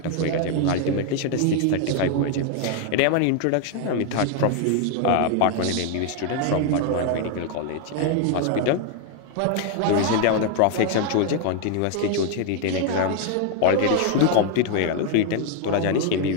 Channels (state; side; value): different; both; correlation 0.00